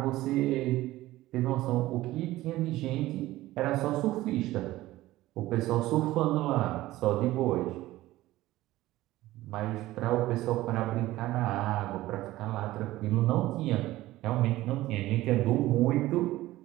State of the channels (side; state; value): left; quieter; 16.6 dB